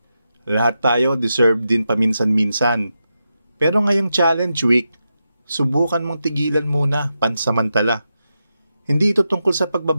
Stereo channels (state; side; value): inverted; both; correlation -0.88